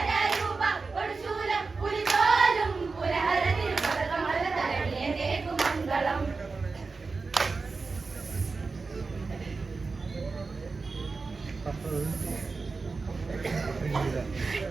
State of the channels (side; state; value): left; quieter; 4.2 dB